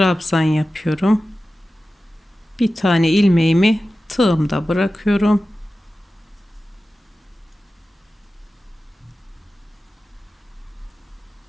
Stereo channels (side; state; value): both; normal; correlation 0.94